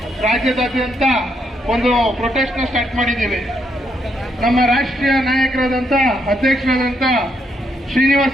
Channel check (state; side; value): normal; both; correlation 0.77